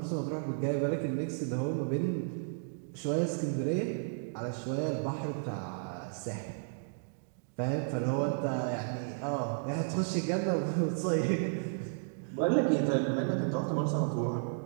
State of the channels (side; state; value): left; silent; digital silence